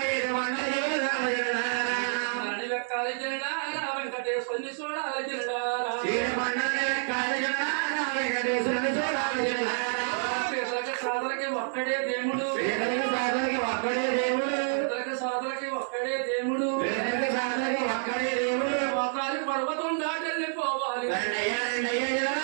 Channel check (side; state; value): left; silent; 59 dB below the other